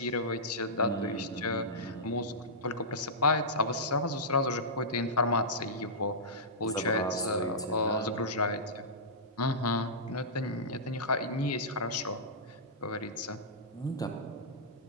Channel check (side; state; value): both; normal; correlation -0.15